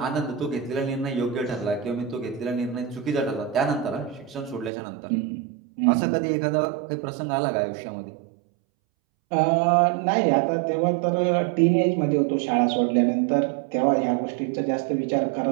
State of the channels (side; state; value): left; drops out; at 4.7 s